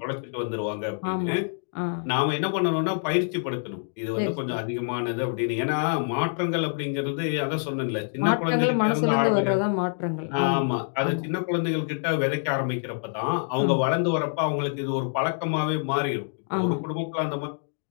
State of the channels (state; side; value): silent; right; digital silence